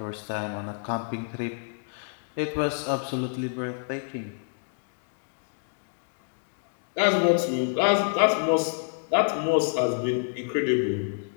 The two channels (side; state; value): right; silent; digital silence